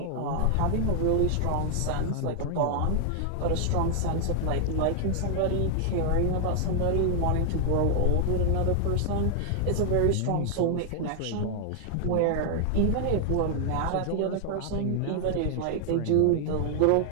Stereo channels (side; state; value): both; different; correlation 0.00